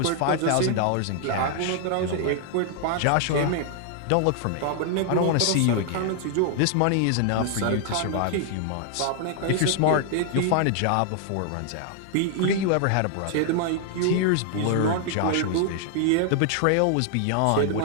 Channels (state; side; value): different; both; correlation 0.00